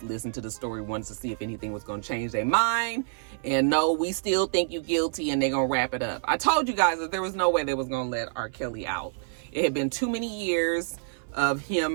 listened to the story once to see if anything was going to change their mind, and no, we still think you guilty, and they're going to wrap it up. I told you guys that there was no way they was going to let RKelly out. It had been too many years of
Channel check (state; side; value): silent; left; 57 dB below the other